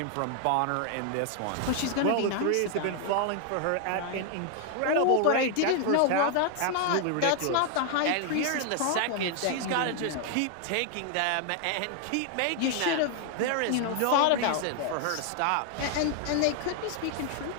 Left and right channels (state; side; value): different; both; correlation 0.00